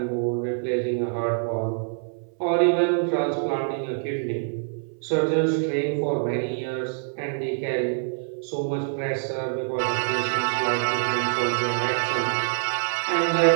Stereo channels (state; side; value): silent; left; 61 dB below the other